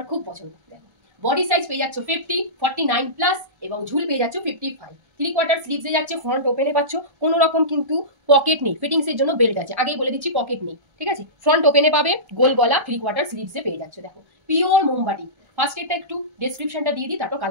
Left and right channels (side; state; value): left; late; 1.3 ms